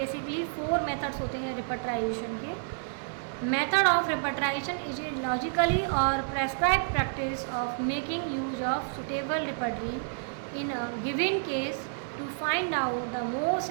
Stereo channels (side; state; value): left; silent; 56 dB below the other